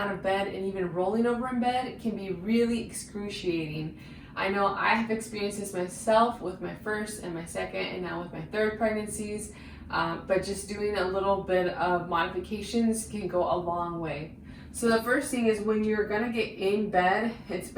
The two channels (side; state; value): both; identical; correlation 1.00